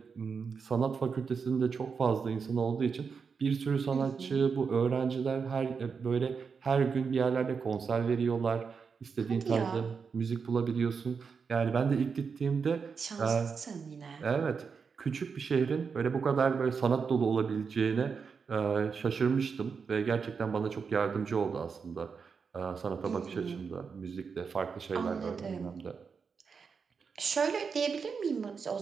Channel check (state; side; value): quieter; left; 5.7 dB